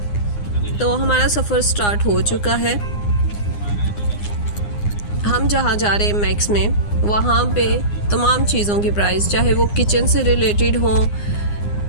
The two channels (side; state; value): right; late; 9.7 ms